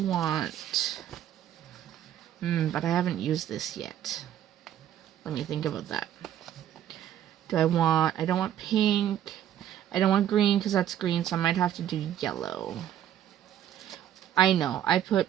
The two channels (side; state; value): left; quieter; 11.0 dB